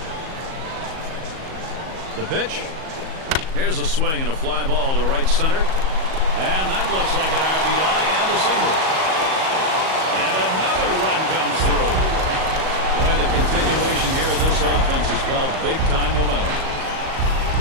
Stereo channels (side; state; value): left; late; 38 ms